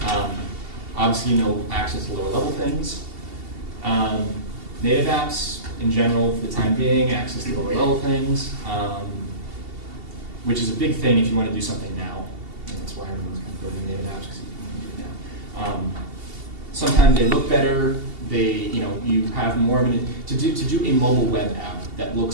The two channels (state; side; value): late; left; 2.7 ms